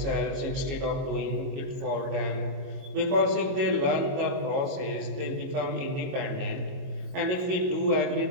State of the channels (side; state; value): left; late; 22 ms